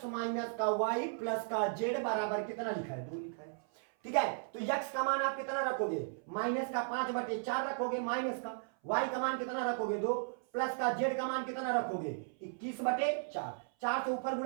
माइनस का y प्लस का z बराबर कितना लिखा है 2 लिखा है, ठीक है। तो x का मान आप कितना रखोगे माइनस का 5/4 रखोगे, माइनस का y का मान कितना रखोगे 2, प्लस का z का मान कितना रखोगे 21/4, 4 से ऊपर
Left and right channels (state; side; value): silent; left; 54 dB below the other